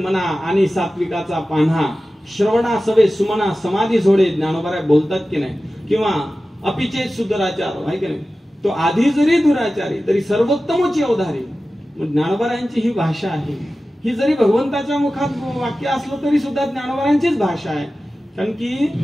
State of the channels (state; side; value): normal; both; correlation 0.95